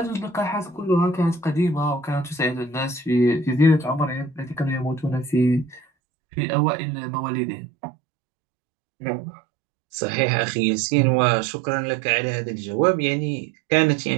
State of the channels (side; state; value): left; drops out; at 5.9 s